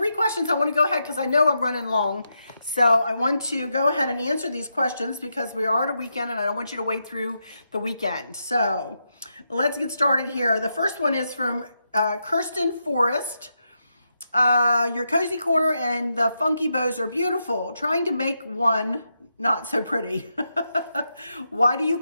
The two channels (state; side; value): inverted; both; correlation -0.84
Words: questions. I want to go ahead because I know I'm running long. So I want to go ahead and answer these questions because we are at a weekend and I don't want you to wait through the weekend. So let's get started here. The first one is from Kirsten Forrest. Your cozy corner and the funky bows are beautiful. Trying to make one not so pretty. Why do you